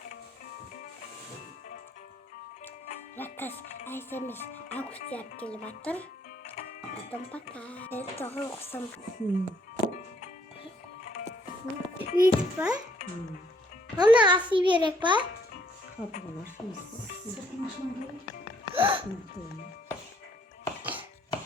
Rakas Ayşemiz Ağustos yap gelip atır. Adım bakar. Evet doğru okusam. Büyük var. Ona asıl bir yere var. Kapılar.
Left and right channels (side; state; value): both; normal; correlation 0.66